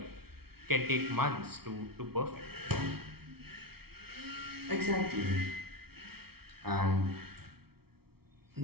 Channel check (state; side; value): late; left; 0.95 ms